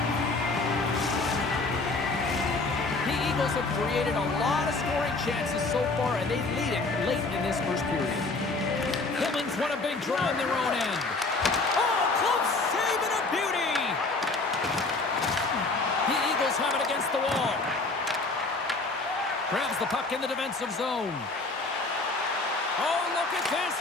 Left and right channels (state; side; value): quieter; right; 3.5 dB